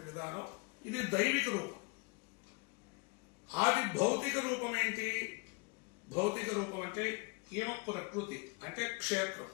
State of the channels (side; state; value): right; quieter; 29.6 dB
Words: విధానం, ఇది దైవిక రూపం. ఆది భౌతిక రూపం ఏంటి? భౌతిక రూపం అంటే ఈయన ప్రకృతి, అంటే క్షేత్రం.